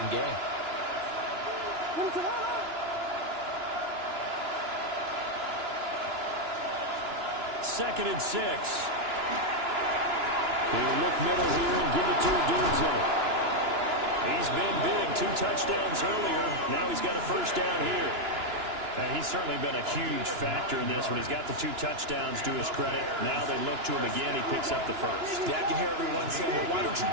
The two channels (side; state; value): left; late; 2.9 ms